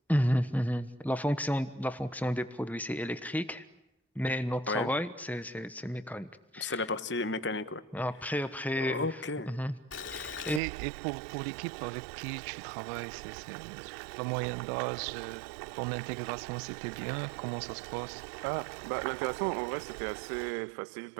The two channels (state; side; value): drops out; left; at 10.6 s